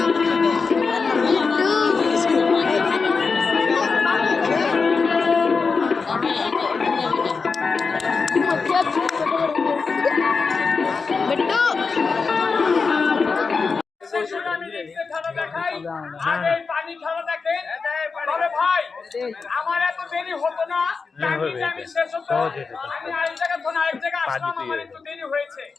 আমার এত দেরি হতো না আমি শেষ হতো আমি আরেক জায়গা থেকে আরেক জায়গা আসলাম আমার একটু দেরি হয়েছে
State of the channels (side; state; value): right; quieter; 4.8 dB